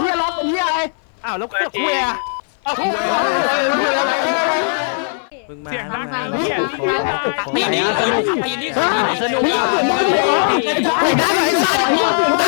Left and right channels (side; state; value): right; silent; 61 dB below the other